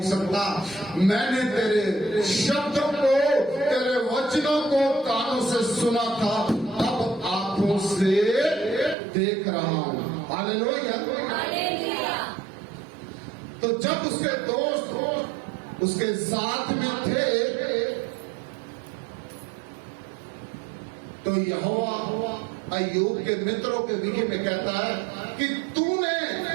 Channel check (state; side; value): drops out; left; at 9.0 s